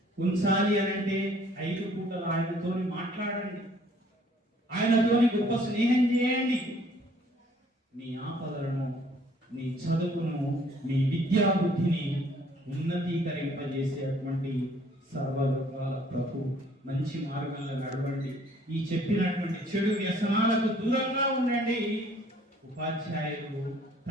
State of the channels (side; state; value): both; normal; correlation 0.59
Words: ఉంచాలి అనంటే 5 పూటలు ఆయనతోని మాట్లాడండి, ఆయనతోని గొప్ప స్నేహం చేయండి. నీ ఆపదలను, నీ చదువును, నీ విద్యా బుద్ధిని ఉన్నతీకరింపజేసేటువంటి సర్వలోకాల ప్రభు మంచి మార్గంలో నడవండి. ఈ చెప్పినటువంటి చెడు వ్యసనాలకు దూరంగా ఉండండి. ఉపాధ్యాయులు,